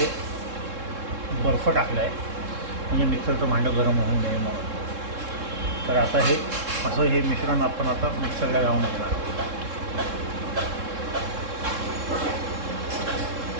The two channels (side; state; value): left; late; 3.7 ms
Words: बर्फ टाकला आहे म्हणजे मिक्सरचं भांडं गरम होऊ नये म्हणून. तर आता हे मिश्रण आपण आता मिक्सरला लावून घेणार आहोत.